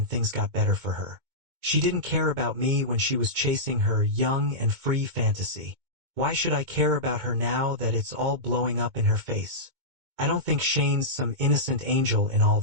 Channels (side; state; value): left; late; 2.2 ms